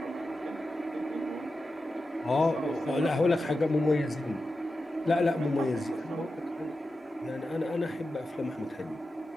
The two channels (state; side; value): normal; both; correlation 0.91